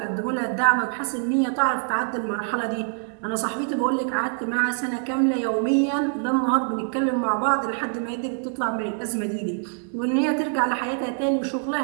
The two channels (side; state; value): left; silent; 58 dB below the other